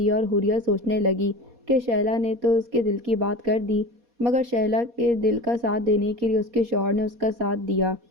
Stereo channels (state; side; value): late; left; 4.2 ms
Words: اور حوریہ سوچنے لگی کہ شیلا نے تو اس کے دل کی بات کر دی، مگر شیلا کے دل کا ساتھ دینے کے لیے اس کے شوہر نے اس کا ساتھ دیا۔